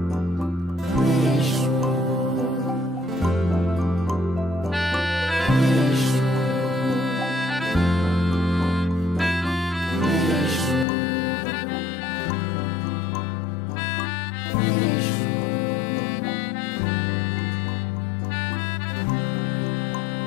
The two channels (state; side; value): drops out; right; at 10.9 s